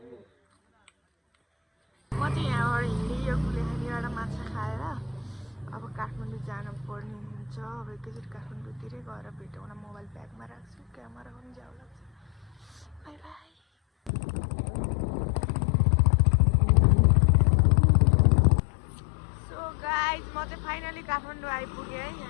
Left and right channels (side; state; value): right; drops out; at 14.1 s